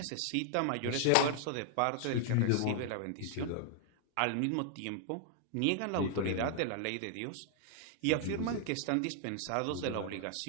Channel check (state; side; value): different; both; correlation 0.00